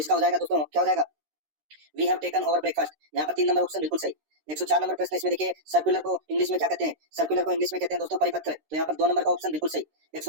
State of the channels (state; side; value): late; left; 13 ms